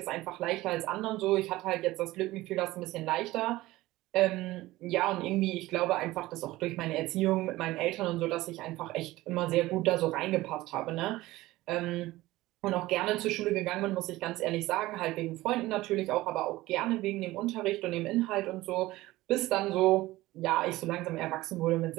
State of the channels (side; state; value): left; quieter; 17.9 dB